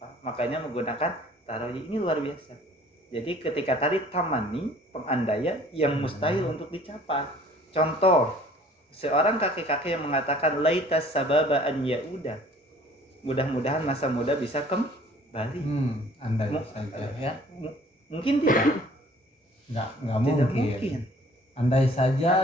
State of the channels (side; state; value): both; normal; correlation 0.53